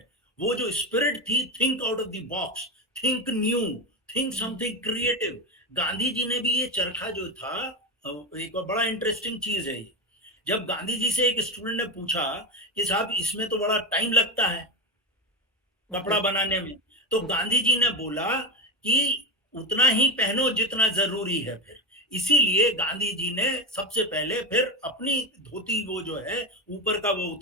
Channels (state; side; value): normal; both; correlation 0.16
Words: वो जो स्पिरिट थी, think out of the box, think new, think something creative, Gandhi ji ने भी ये चरखा जो था, एक बड़ा इंटरेस्टिंग चीज है ये, जब गांधी जी से एक स्टूडेंट ने पूछा कि साहब इसमें तो बड़ा टाइम लगता है कपड़ा बनाने में, तो गांधी जी ने बोला कि उतना ही पहनो जितना जरूरी है। फिर इसीलिए गांधी जी ने सबसे पहले फिर अपनी धोती, वो जो है ऊपर का, वो